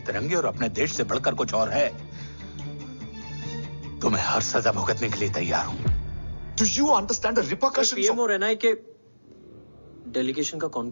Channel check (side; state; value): both; inverted; correlation -1.00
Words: तिरंगे और अपने देश से बढ़कर कुछ और है, तो मैं हर सजा भुगतने के लिए तैयार हूं। Do you understand the repercussions? PM और एनआई के डेलीगेशन का कौन